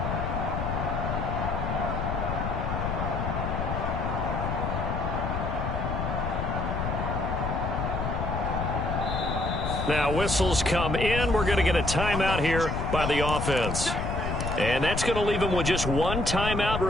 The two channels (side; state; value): left; noise; rumble, 2 dB below the sound